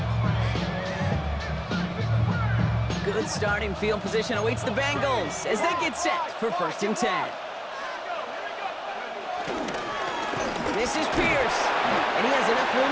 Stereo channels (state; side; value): identical; both; correlation 1.00